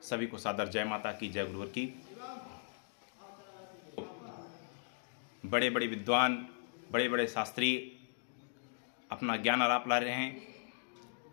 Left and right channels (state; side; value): silent; right; digital silence